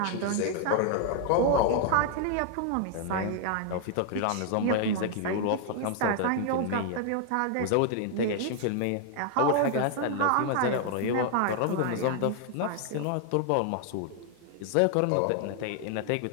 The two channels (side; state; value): both; different; correlation 0.00